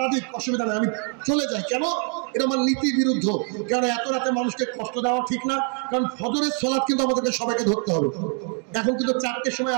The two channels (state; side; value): quieter; left; 39.2 dB